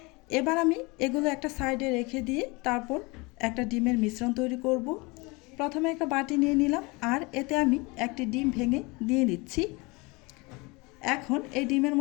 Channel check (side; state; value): right; quieter; 26.0 dB